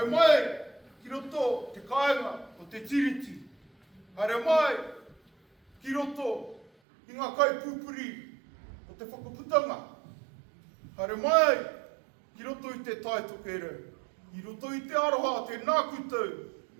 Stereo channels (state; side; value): drops out; left; at 6.7 s